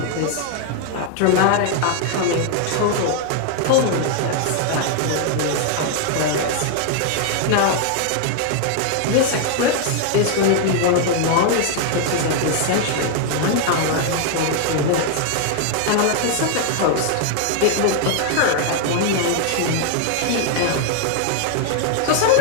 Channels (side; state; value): both; different; correlation 0.00